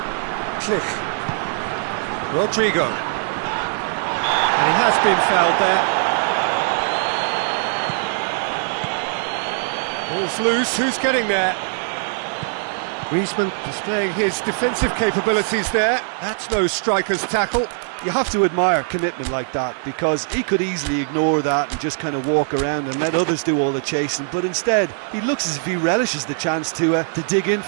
Click. Rodrigo. And he has been fouled there. Ball's loose, who's getting there? Griezmann displaying his defensive capabilities there. That's no striker's tackle. You have to admire commitment like that, because he could easily ignore that and just kind of walk around and let others do all the chasing, but instead he looks as if he relishes the chance to dig in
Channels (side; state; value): left; silent; digital silence